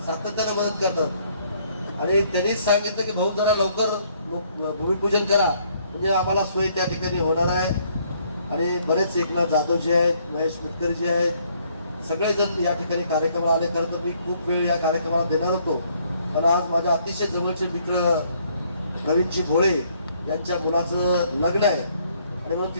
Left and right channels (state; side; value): inverted; both; correlation -0.66